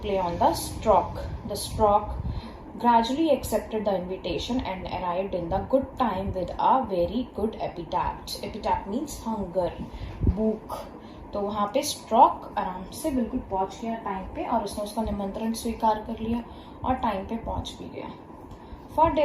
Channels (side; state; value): both; identical; correlation 1.00